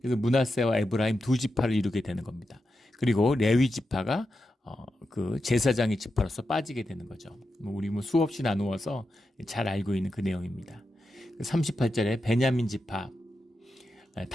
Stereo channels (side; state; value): both; normal; correlation 0.88